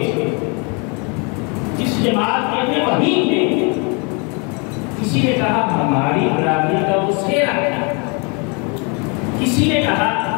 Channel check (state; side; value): quieter; right; 33.3 dB